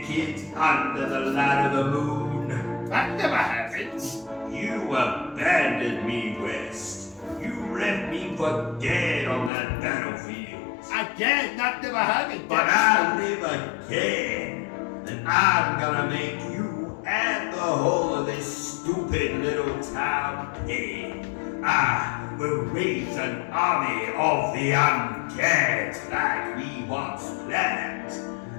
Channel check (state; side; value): drops out; right; at 9.5 s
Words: under the light of the moon? That never happens. You abandoned me, West. You left me for dead on that battlefield. Again, that never happened. But I live again, and I'm gonna make you and the whole of this stupid little town paid. I will raise an army of the undead like we once planned.